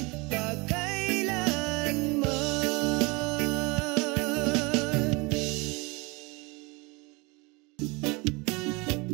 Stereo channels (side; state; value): left; quieter; 26.9 dB